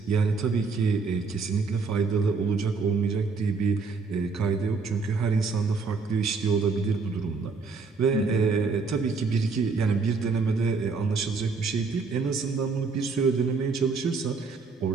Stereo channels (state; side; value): quieter; left; 4.5 dB